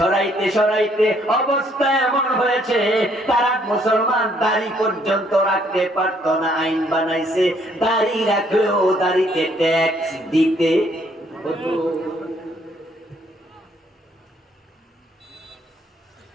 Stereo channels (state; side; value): normal; both; correlation 0.67